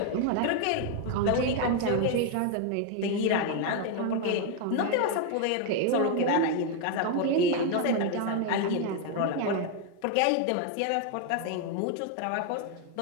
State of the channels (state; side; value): different; both; correlation 0.01